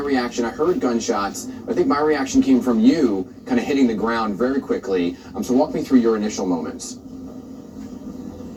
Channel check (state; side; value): identical; both; correlation 1.00